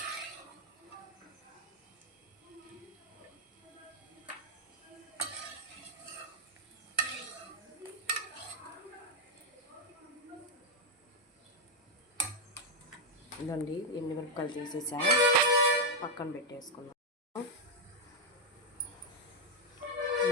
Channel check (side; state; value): both; normal; correlation 0.01